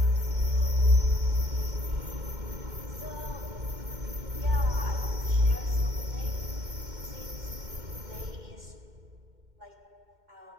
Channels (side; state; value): left; late; 2.1 ms